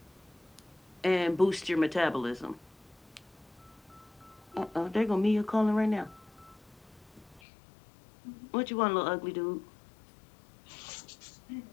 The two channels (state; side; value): drops out; right; at 7.4 s